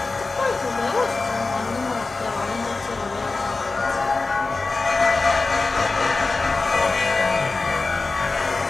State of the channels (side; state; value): right; quieter; 3.7 dB